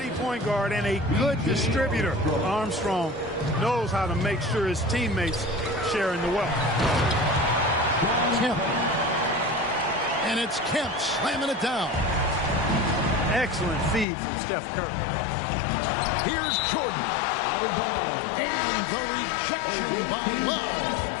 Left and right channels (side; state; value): right; drops out; at 14.1 s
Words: point guard and a good distributor. Armstrong knows how to make sure his teammates share in the wealth. Kemp. And it's Kemp slamming it down. Excellent feed from Steph Curry. Here's Jordan. And the rejection by Love.